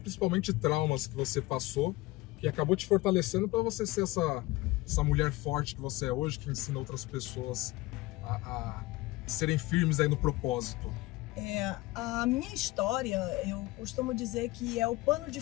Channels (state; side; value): quieter; right; 20.0 dB